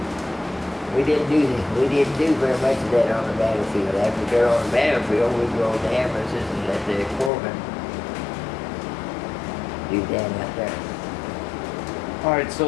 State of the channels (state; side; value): drops out; right; at 7.3 s